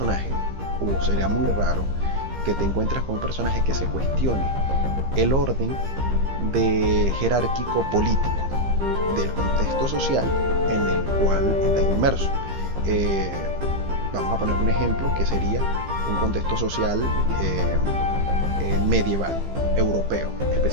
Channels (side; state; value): left; late; 15 ms